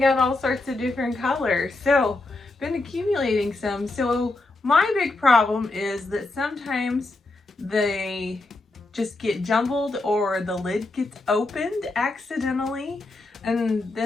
out all sorts of different colors. So been accumulating some. So my big problem is that sometimes they just get jumbled or the lid gets opened accidentally. And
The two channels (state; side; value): quieter; right; 3.1 dB